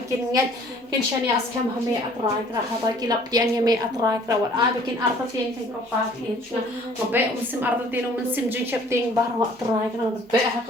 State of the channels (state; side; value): normal; both; correlation 0.55